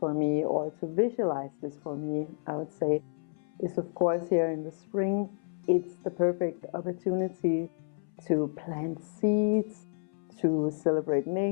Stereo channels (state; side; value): silent; right; 58 dB below the other